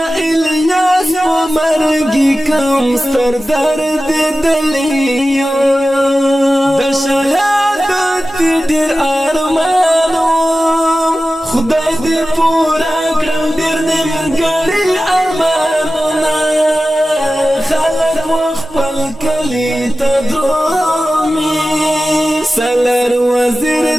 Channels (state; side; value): normal; both; correlation 0.95